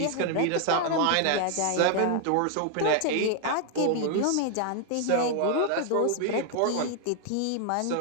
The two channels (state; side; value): different; both; correlation 0.00